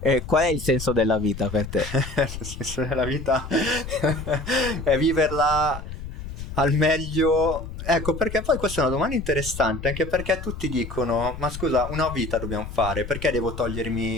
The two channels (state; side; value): noise; left; rumble, 9 dB below the sound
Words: Qual è il senso della vita per te? Il senso della vita è viverla al meglio. Ecco, perché poi questa è una domanda interessante, anche perché tutti dicono, ma scusa, una vita dobbiamo fare, perché devo